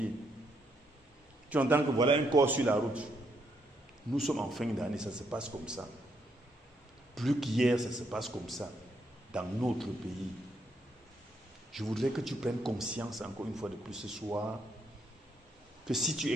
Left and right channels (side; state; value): both; normal; correlation 0.75